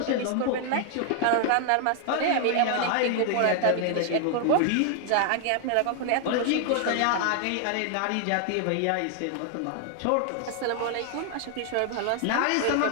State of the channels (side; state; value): both; different; correlation 0.00